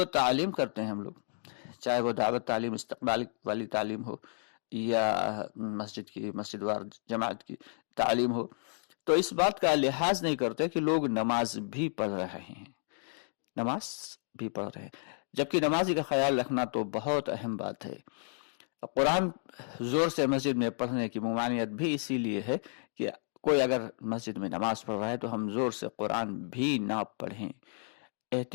تعلیم کرتے ہیں ہم لوگ، چاہے وہ دعوت تعلیم، استقبال والی تعلیم ہو، یا مسجد وار جماعت کی تعلیم ہو، تو اس بات کا لحاظ نہیں کرتے کہ لوگ نماز بھی پڑھ رہے ہیں، نماز بھی پڑھ رہے ہیں، جبکہ نمازی کا خیال رکھنا تو بہت اہم بات ہے۔ قرآن زور سے مسجد میں پڑھنے کی ممانعت بھی اسی لیے ہے کہ کوئی اگر مسجد میں نماز پڑھ رہا ہے تو ہم زور سے قرآن بھی نہ پڑھیں،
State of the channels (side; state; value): right; silent; digital silence